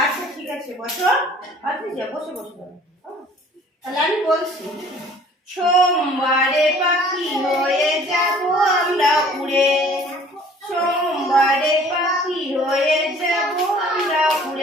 আচ্ছা ঠিক আছে, বসো। আচ্ছা বসে বসো। তাহলে আমি বলছি। সোমবারে পাখি হয়ে যাব আমরা উড়ে, সোমবারে পাখি হয়ে যাব আমরা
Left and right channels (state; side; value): normal; both; correlation 0.53